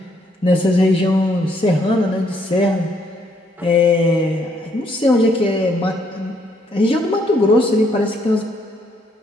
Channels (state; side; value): normal; both; correlation 0.70